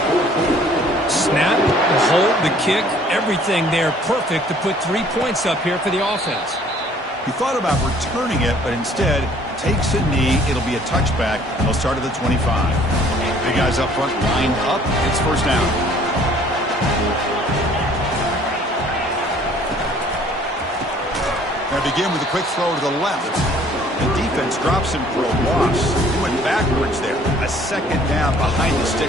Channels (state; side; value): normal; both; correlation 0.56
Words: Snap, the hold, the kick, everything there perfect to put 3 points up here for the offense. He thought about returning it, but instead takes a knee. It'll be a touchback, and they'll start at the 25. Big guys up front lined up. It's 1st down. Now begin with a quick throw to the left. The defense drops him for a loss. He went backwards there. A 2nd down behind the